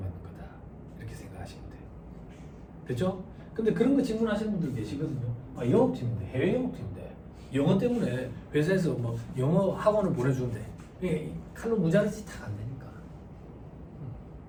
거다. 이렇게 생각하시면 돼요. 됐죠? 근데 그런 거 질문하시는 분들 계시거든요. 아, 영업팀인데, 해외 영업팀인데 영어 때문에 회사에서 뭐 영어 학원을 보내주는데 이게 칼로 무자르지 다 안 되니까.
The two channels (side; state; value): both; identical; correlation 1.00